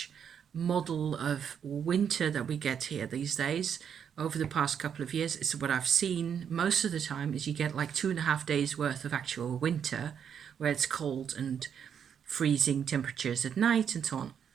model of winter that we get here these days. Over the past couple of years, it's what I've seen most of the time is you get like 2.5 days worth of actual winter where it's cold and freezing temperatures at night and so on.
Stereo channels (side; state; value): left; quieter; 7.9 dB